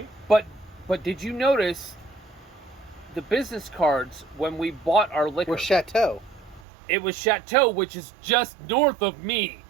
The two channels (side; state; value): left; drops out; at 6.7 s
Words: But did you notice the business cards when we bought our liquor? Were Chateau. It was Chateau, which is just north of me.